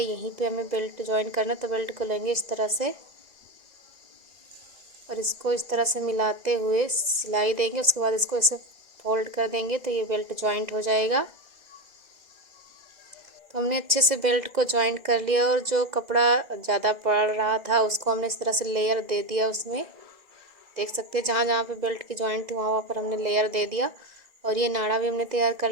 यहीं पे हमें बेल्ट जॉइंट करना है। तो बेल्ट को लेंगे इस तरह से और इसको इस तरह से मिलाते हुए सिलाई देंगे। उसके बाद इसको ऐसे फोल्ड कर देंगे तो ये बेल्ट जॉइंट हो जाएगा। तो हमने अच्छे से बेल्ट को जॉइंट कर लिया और जो कपड़ा ज़्यादा पड़ रहा था उसको हमने इस तरह से लेयर दे दिया उसमें। देख सकते हैं जहाँ जहाँ पे बेल्ट की जॉइंट थी वहाँ वहाँ पर हमने लेयर दे दिया और ये नाड़ा भी हमने तैयार कर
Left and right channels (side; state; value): left; late; 2.0 ms